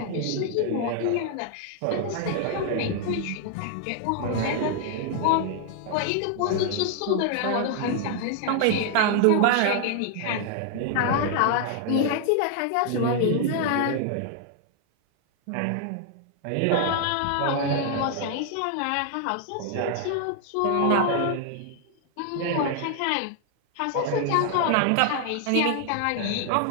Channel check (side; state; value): both; different; correlation 0.00